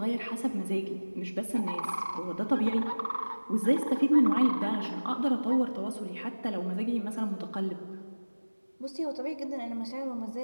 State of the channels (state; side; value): inverted; both; correlation -1.00